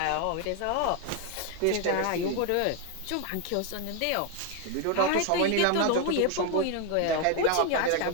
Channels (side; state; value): both; different; correlation 0.01